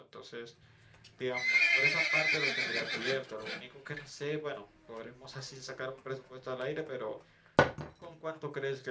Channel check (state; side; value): identical; both; correlation 1.00